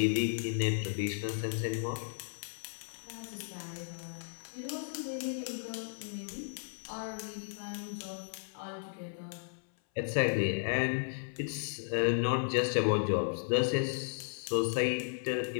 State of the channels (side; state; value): right; silent; 55 dB below the other